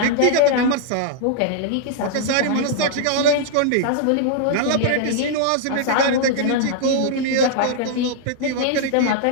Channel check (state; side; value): different; both; correlation -0.01